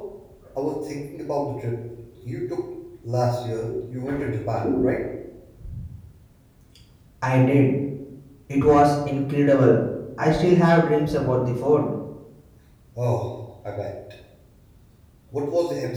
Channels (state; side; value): identical; both; correlation 1.00